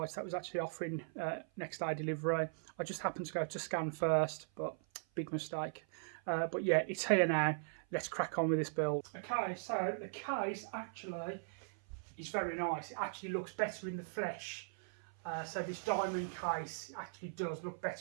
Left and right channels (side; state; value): left; silent; 52 dB below the other